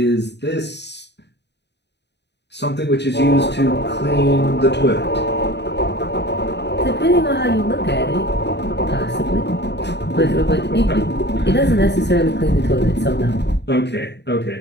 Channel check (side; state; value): right; late; 0.50 ms